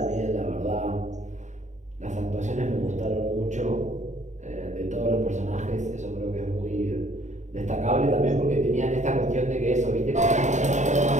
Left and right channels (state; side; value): late; left; 0.34 ms